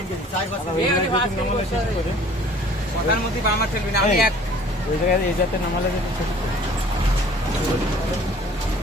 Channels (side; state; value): both; normal; correlation 0.51